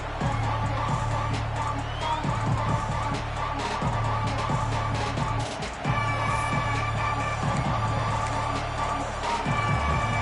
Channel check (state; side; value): identical; both; correlation 1.00